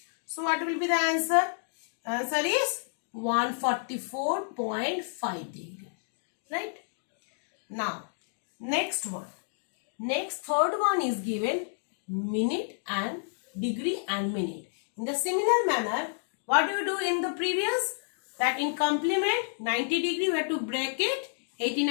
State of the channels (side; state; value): right; silent; digital silence